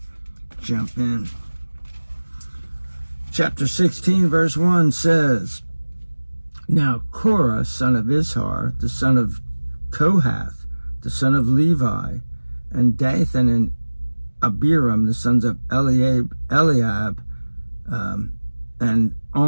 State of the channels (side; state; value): both; inverted; correlation -1.00